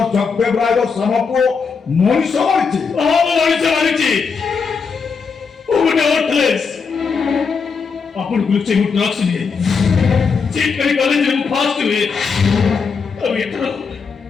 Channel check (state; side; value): quieter; right; 5.4 dB